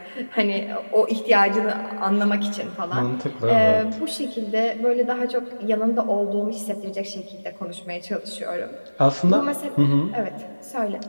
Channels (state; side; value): inverted; both; correlation -1.00